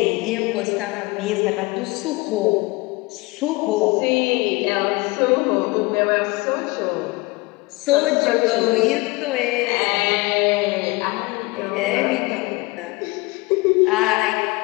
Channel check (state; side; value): quieter; right; 23.7 dB